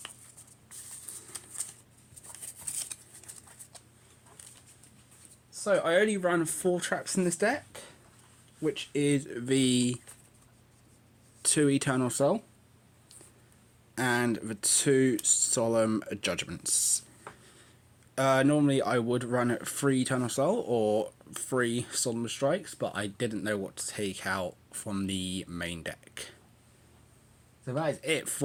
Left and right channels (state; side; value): identical; both; correlation 1.00